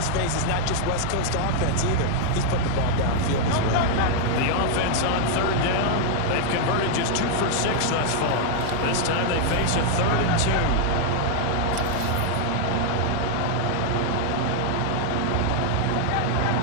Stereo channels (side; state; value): both; different; correlation 0.00